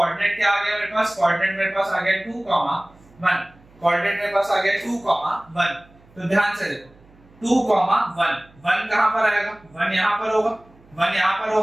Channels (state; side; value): noise; right; hum, 28 dB below the sound